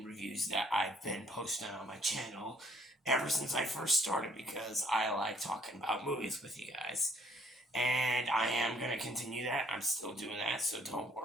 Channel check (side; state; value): both; normal; correlation 0.63